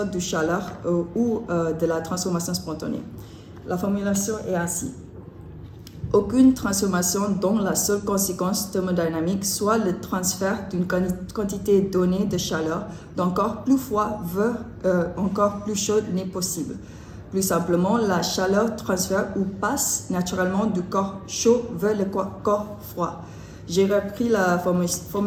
de chaleur ou de la transformation spontanée. La formulation est ainsi. Aucune transformation dont la seule conséquence thermodynamique soit le transfert d'une quantité donnée de chaleur d'un corps plus froid vers un corps plus chaud n'est possible. Plus simplement, la chaleur transfère ou passe naturellement du corps chaud vers le corps froid. J'ai repris la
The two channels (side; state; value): both; identical; correlation 1.00